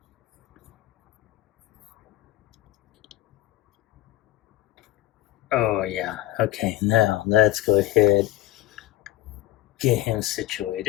oh yeah, okay, now let's go ahead, get him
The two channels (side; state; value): right; quieter; 14.0 dB